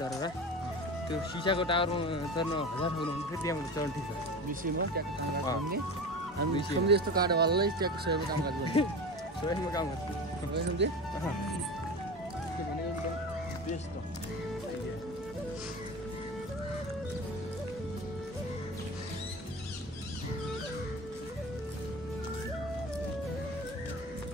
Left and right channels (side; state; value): both; normal; correlation 0.30